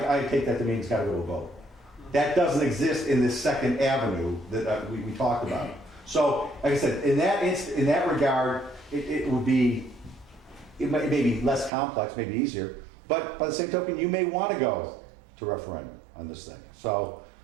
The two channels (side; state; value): left; drops out; at 11.7 s